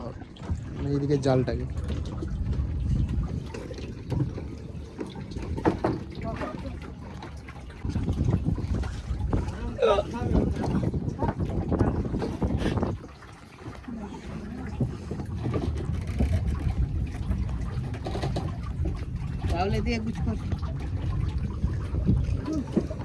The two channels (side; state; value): both; identical; correlation 1.00